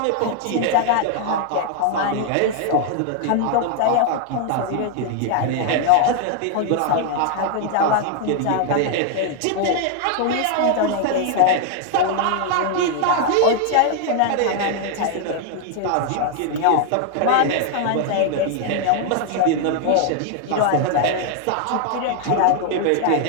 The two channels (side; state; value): both; different; correlation 0.00